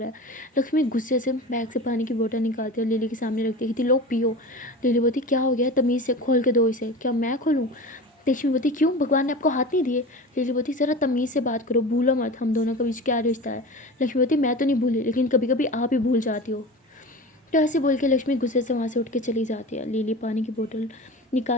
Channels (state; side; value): normal; both; correlation 0.32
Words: है। लक्ष्मी गुस्से से बैग से पानी की बोतल निकालती है और लिली के सामने रखती है कि लो पियो। लिली बोलती क्या हो गया, तमीज़ से खोल के दो इसे। क्या मैं खोलूँ। लक्ष्मी बोलती क्यों, भगवान ने आपको हाथ नहीं दिए। लिली बोलती ज़रा तमीज़ से बात करो, भूलो मत हम दोनों के बीच क्या रिश्ता है। लक्ष्मी बोलती मैं तो नहीं भूली, लेकिन कभी कभी आप ही भूल जाती हो। तो ऐसे बोल के लक्ष्मी गुस्से से वहाँ से उठ के चली जाती है। लिली पानी की बोतल